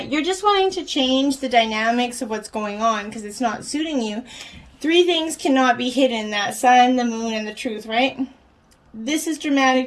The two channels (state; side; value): identical; both; correlation 1.00